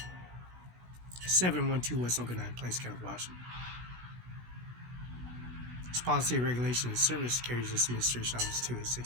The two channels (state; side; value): late; left; 16 ms